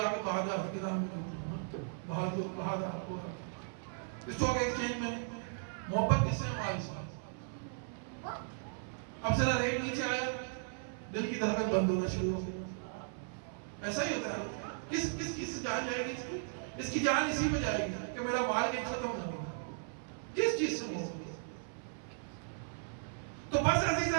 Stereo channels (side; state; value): left; silent; 53 dB below the other